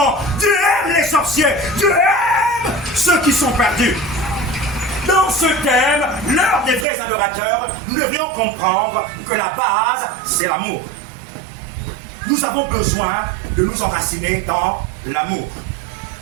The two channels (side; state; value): left; drops out; at 6.9 s